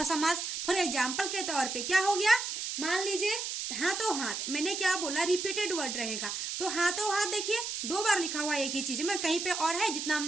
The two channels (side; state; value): right; noise; hiss, 4 dB below the sound